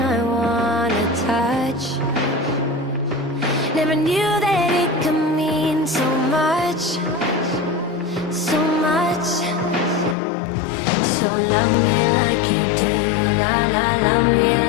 I wanna touch. Never knew that it could mean so much, so much. So love me like you do, la la, love me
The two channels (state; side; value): drops out; right; at 10.2 s